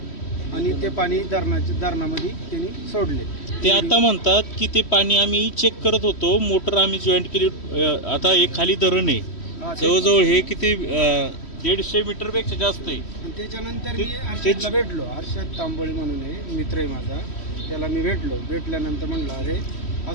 आणि ते पाणी धरणामध्ये त्यांनी सोडले. ते आता म्हणतात की ते पाणी आम्ही चेक करत होतो, मोटर आम्ही जॉईंट केली. आता एक खाली धरण आहे जवळजवळ हे किती 150 मीटर पेक्षा जास्त आहे. त्याच्यानंतर मी हर्षदला भेटलो, हर्षद तांबोळी म्हणून आहे, मित्र आहे माझा, त्याला मी भेटल्यानंतर म्हणलं अरे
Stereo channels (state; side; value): late; right; 3.1 ms